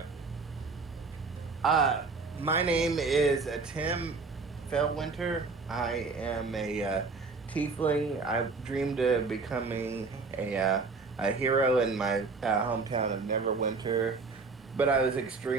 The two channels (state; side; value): quieter; left; 4.3 dB